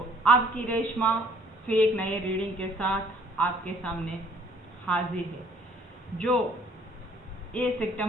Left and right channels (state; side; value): normal; both; correlation 0.59